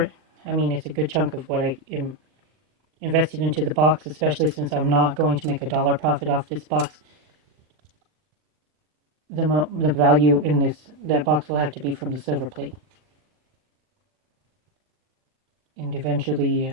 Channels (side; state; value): left; late; 40 ms